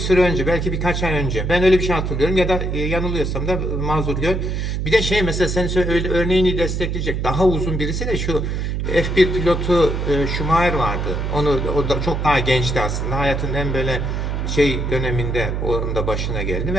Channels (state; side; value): noise; right; hum, 1 dB below the sound